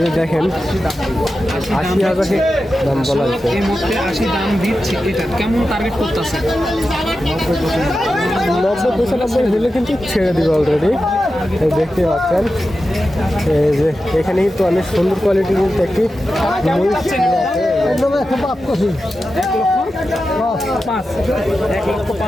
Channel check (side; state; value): both; normal; correlation 0.91